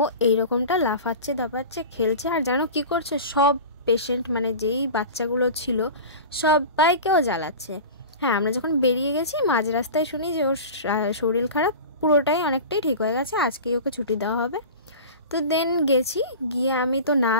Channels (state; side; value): inverted; both; correlation -0.33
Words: এইরকমটা লাফাচ্ছে, দাপাচ্ছে, খেলছে, আর জানো কী করছে, সব পেশেন্ট মানে যেই বাচ্চাগুলো ছিল সবাইকেও জ্বালাচ্ছে। হ্যাঁ, আমরা যখন বেরিয়ে গেছি মাঝ রাস্তায় শুনি যে ওর শরীর খারাপ, পুরোটাই অনেকটাই ঠিক হয়ে গেছে, আজকেই ওকে ছুটি দেওয়া হবে। তো দেন গেছি, গিয়ে আমি তো না